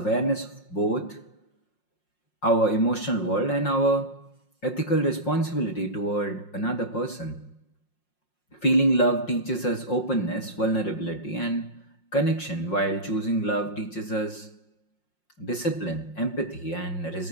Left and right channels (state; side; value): late; right; 5.6 ms